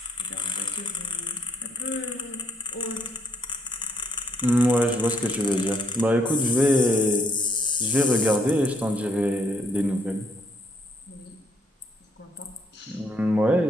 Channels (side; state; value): both; normal; correlation 0.70